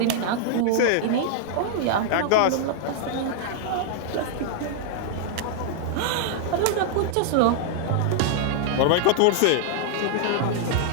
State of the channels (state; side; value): different; both; correlation -0.01